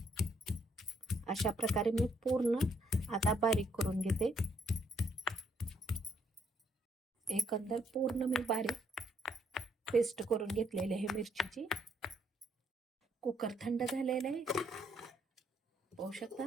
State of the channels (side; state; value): both; normal; correlation 0.71